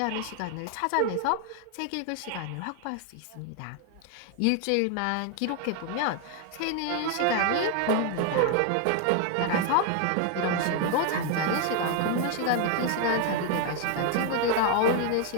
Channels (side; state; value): both; different; correlation 0.00